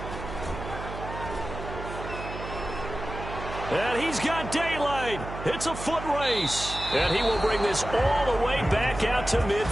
And he's got daylight. It's a foot race. And he will bring this all the way back out to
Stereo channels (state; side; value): noise; right; hum, 9 dB below the sound